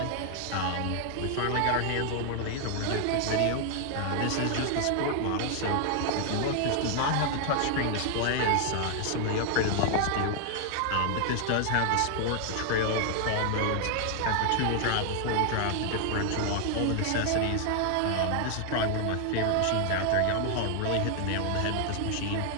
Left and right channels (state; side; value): different; both; correlation 0.00